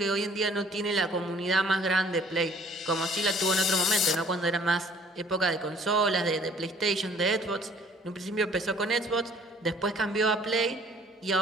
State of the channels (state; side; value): normal; both; correlation 0.56